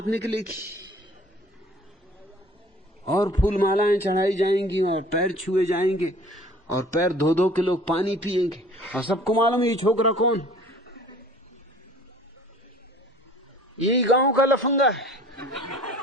निकलेगी और फूल मालाएं चढ़ाई जाएंगी और पैर छुए जाएंगे और पैर धो धो के लोग पानी पिएंगे। और सबको मालूम ये छोकरा कौन? यही गांव का लफंगा है,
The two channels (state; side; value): normal; both; correlation 0.50